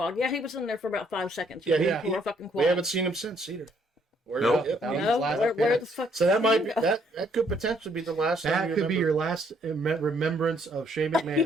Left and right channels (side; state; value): both; normal; correlation 0.68